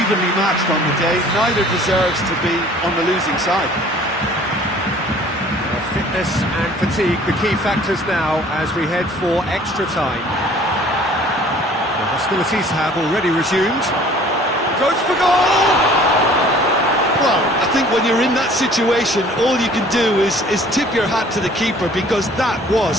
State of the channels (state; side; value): normal; both; correlation 0.52